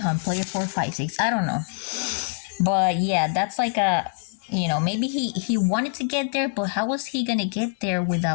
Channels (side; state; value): right; silent; digital silence